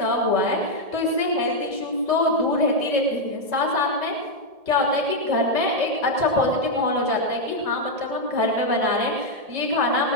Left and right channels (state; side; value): late; left; 1.7 ms